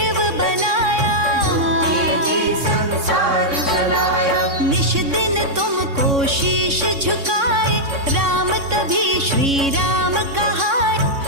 बनाया, संसार चलाया। निश दिन तुमको शीश झुकाए, राम तभी श्री राम कहाए,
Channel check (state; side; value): late; left; 3.6 ms